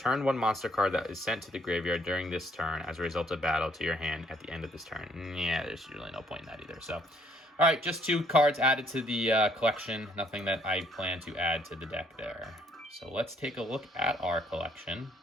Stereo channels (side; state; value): both; normal; correlation 0.66